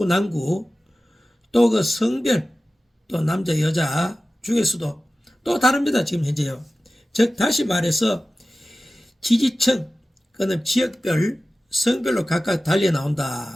남구, 또 그 성별, 또 남자 여자 중에서도 또 다릅니다. 지금 현재요. 즉 다시 말해서 지지층, 그는 지역별, 성별로 각각 달려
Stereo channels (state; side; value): normal; both; correlation 0.95